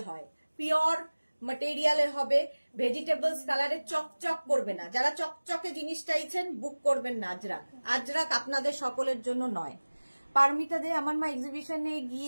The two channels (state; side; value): inverted; both; correlation -1.00